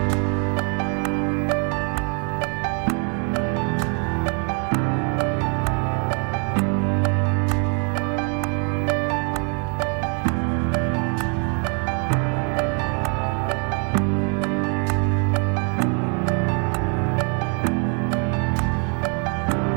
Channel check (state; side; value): quieter; left; 37.8 dB